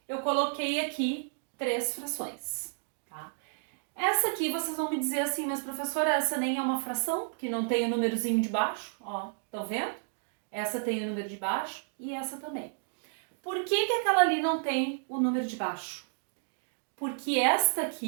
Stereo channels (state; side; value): silent; left; digital silence